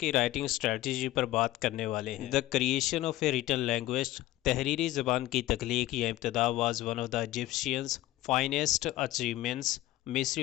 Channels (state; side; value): quieter; right; 16.0 dB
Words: राइटिंग स्ट्रेटजी पर बात करने वाले हैं। The creation of a written language, तहरीरी ज़बान की तख्लीक या इब्तिदा was one of the Egyptians finest achievements,